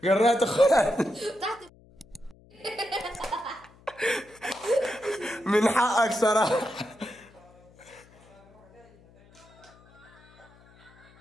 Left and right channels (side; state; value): left; noise; hum, 27 dB below the sound